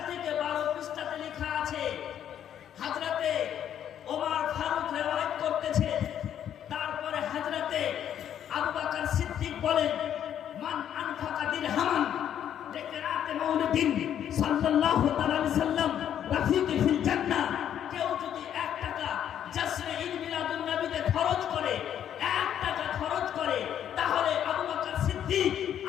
থেকে 12 পৃষ্ঠাতে লেখা আছে। হযরতে ওমর ফারুক রিওয়ায়াত করতেছে। তারপরে হযরতে আবু বকর সিদ্দিক বলেন, মান আনফাকা দিরহামান লিকিরাতে মাউলিদিন সাল্লাল্লাহু তাআলা আলাইহি সাল্লাম রাফিকি ফিল জান্নাহ, কেউ যদি 1 টাকা জশ্নে ঈদ মিলাদুন নবীতে খরচ করে, 1 টাকা খরচ করে, তাহলে আবু বকর সিদ্দিক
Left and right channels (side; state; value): right; quieter; 9.9 dB